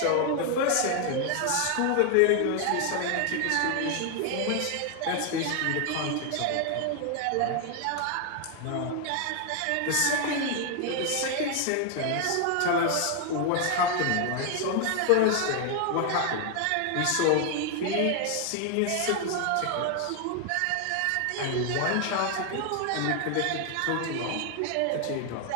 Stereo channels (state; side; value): different; both; correlation 0.00